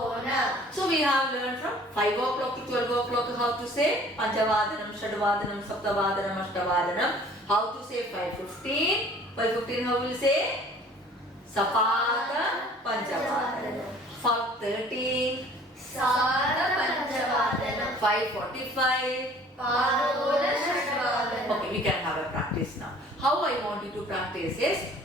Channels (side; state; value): both; normal; correlation 0.51